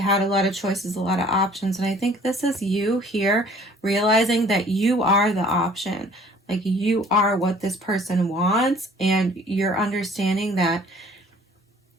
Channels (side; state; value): both; normal; correlation 0.54